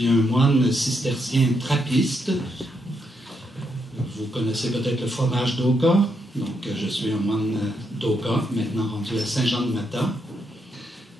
un moine cistercien trappiste. Vous connaissez peut-être le fromage d'Oka. Donc, je suis un moine d'Oka, maintenant rendu à Saint-Jean-de-Mata.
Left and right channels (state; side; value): normal; both; correlation 0.79